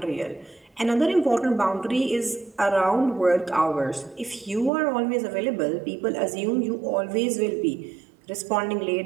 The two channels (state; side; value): drops out; left; at 4.7 s